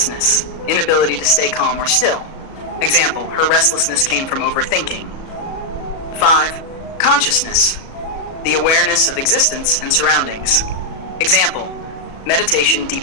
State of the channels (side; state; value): right; late; 37 ms